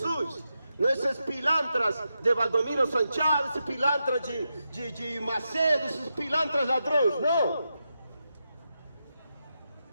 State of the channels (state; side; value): inverted; both; correlation -0.87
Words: não esses pilantras de Valdomiro Santiago, esses pilantras de Macedo, esses pilantras ladrões, não.